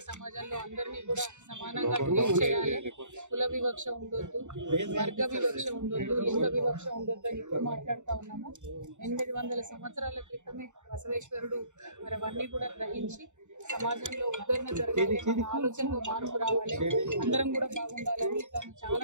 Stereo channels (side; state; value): left; late; 0.84 ms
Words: సమాజంలో అందరినీ కూడా సమానంగా ట్రీట్ చేయాలి, కుల వివక్ష ఉండొద్దు, వర్గ వివక్ష ఉండొద్దు, లింగ వివక్ష ఉండొద్దు అని ఇప్పుడు మాట్లాడుతూ ఉన్నాము. 800 సంవత్సరాల క్రితమే బసవేశ్వరుడు మరి అవన్నీ కూడా గ్రహించి సమాజంలో ఉద్ధరణ జరగాలి, మన ఆలోచనలో మార్పు రావాలి, అందరం కూడా బాగుండాలని తను చాలా